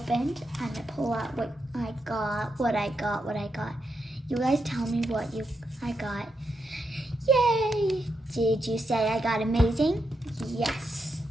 I'm gonna pull out what I got. You guys tell me what I got. Yay! Did you say I got amazing? Yes,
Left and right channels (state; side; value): normal; both; correlation 0.84